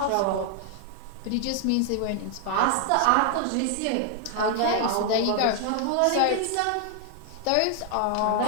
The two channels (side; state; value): both; different; correlation 0.00